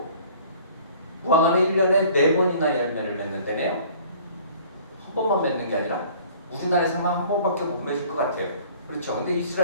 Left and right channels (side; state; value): both; inverted; correlation -0.52